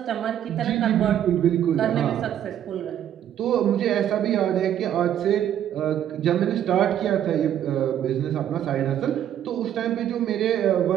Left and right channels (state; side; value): quieter; left; 10.5 dB